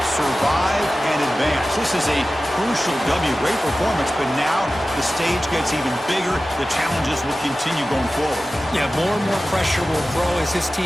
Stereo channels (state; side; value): normal; both; correlation 0.95